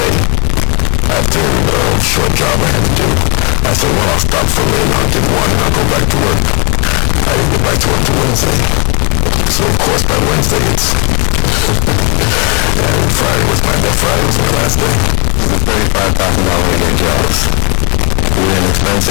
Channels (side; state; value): right; quieter; 34.1 dB